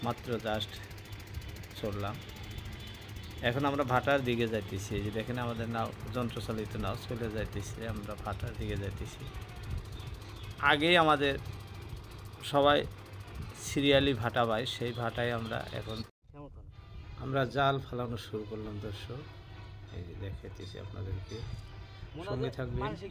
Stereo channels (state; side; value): identical; both; correlation 1.00